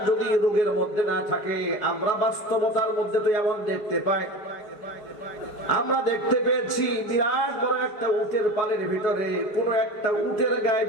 যদি রোগের মধ্যে না থাকে, আমরা বাস্তবতার মধ্যে তো এমন দেখতে পাই, আমরা দেখতে পেয়েছি বিরাট বড় একটা উটের পালের ভিতরে কোন একটা উটের গায়ে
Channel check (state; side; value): late; right; 4.9 ms